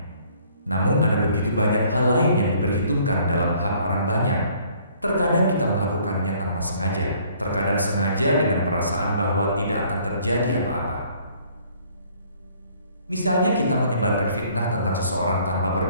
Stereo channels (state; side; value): inverted; both; correlation -0.60